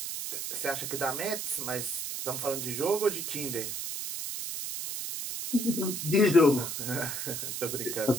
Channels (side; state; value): right; noise; hiss, 4 dB below the sound